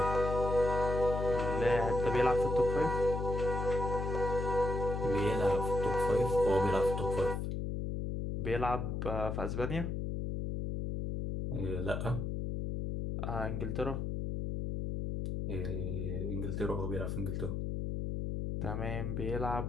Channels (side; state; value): left; noise; hum, 2 dB below the sound